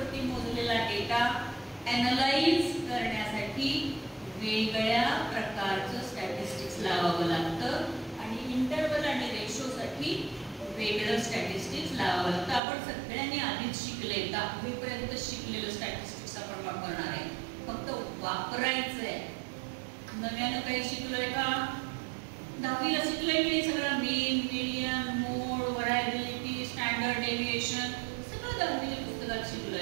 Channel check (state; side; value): drops out; left; at 12.6 s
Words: मोजलेला डेटा ॲनलाइज करण्यासाठी वेगळ्या प्रकारचं स्टॅटिस्टिक्स लावावं लागतं आणि इंटरव्हल आणि रेशोसाठी वेगळं स्टॅटिस्टिक्स लावावं लागतं. आपण सगळ्यांनी आधीच शिकले, 10वी पर्यंत शिकलेलं स्टॅटिस्टिक्स आपण वापरणार आहे, फक्त वापरायचंय. नव्यानं काही शिकलोय का? 10वीला शिकलोय की सगळं मीन, मीडियन, मोड, व्हरायबिलिटी, स्टँडर्ड डेव्हिएशन सगळं 10वीच्या पुस्तकात